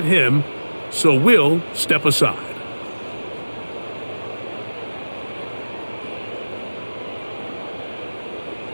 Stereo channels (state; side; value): inverted; both; correlation -1.00